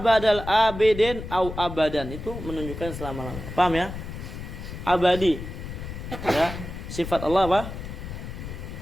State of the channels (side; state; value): left; noise; rumble, 9 dB below the sound